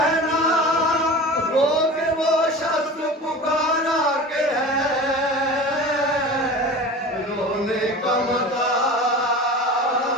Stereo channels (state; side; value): normal; both; correlation 0.35